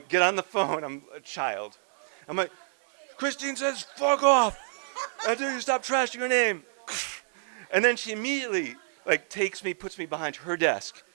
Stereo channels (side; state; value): left; silent; digital silence